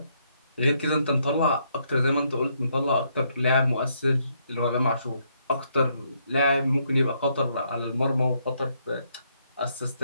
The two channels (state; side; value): inverted; both; correlation -0.73